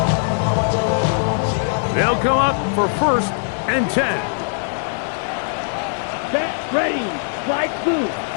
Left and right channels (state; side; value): silent; right; 65 dB below the other